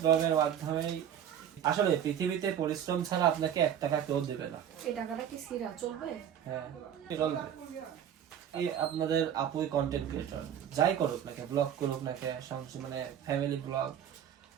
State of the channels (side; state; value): left; quieter; 9.4 dB